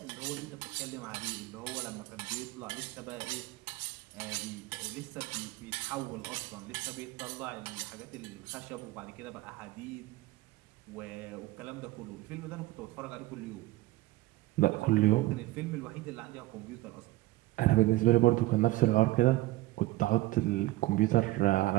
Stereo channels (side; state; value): left; quieter; 18.4 dB